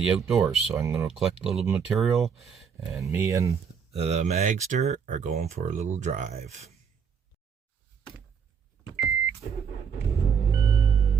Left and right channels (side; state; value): left; quieter; 6.7 dB